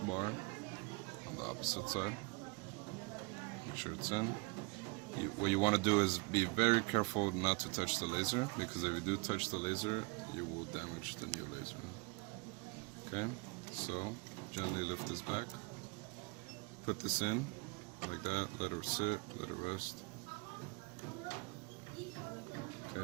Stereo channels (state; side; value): quieter; left; 28.3 dB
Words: bar on the opposite side. Make sure it's in. What you want to do is be very careful not to touch the laser, because if you do touch the laser, you will damage the new laser. Okay, so gently lift this back. Put this in, like that, let it sit, let it rest.